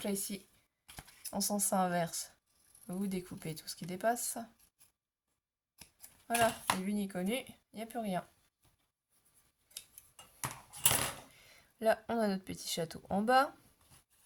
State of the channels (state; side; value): identical; both; correlation 1.00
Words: là, ici, en sens inverse, vous découpez tout ce qui dépasse. Voilà, ni vu ni connu, il n'y a plus rien. Là, on a notre petit château en bas.